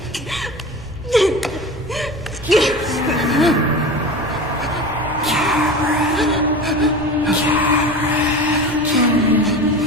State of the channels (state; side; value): normal; both; correlation 0.31